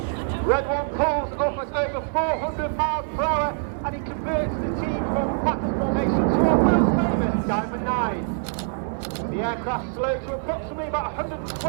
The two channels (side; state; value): left; silent; 56 dB below the other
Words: Red 1 pulls up at over 400 miles per hour and he converts the team from batters formation to a world famous Diamond 9. The aircraft slows to approximately about